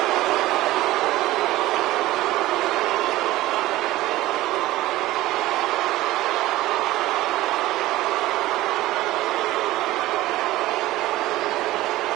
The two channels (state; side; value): quieter; left; 16.9 dB